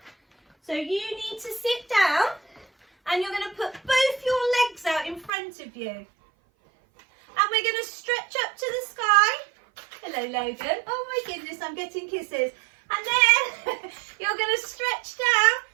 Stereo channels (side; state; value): left; drops out; at 5.3 s